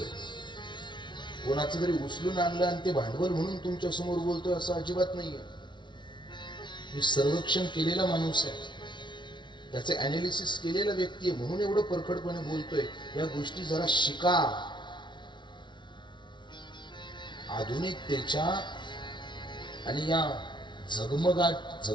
कोणाचं तरी उचलून आणलं आणि ते भांडवल म्हणून तुमच्या समोर बोलतोय असं अजिबात नाहीये. मी सर्वेक्षण केलेला माणूस आहे, त्याचे अनालिसिस केलेला व्यक्ती आहे, म्हणून एवढं परखडपणे बोलतोय. या गोष्टी जरा शिका. आधुनिकतेच्या आणि या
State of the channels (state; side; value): late; right; 0.23 ms